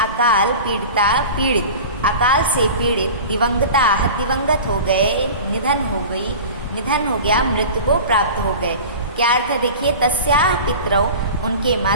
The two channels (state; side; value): inverted; both; correlation -0.35